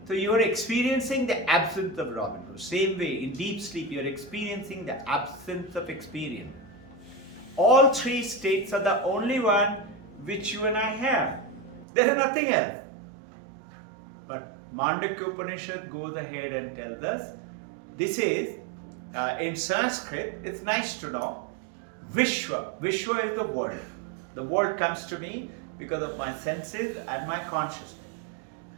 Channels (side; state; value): left; drops out; at 11.9 s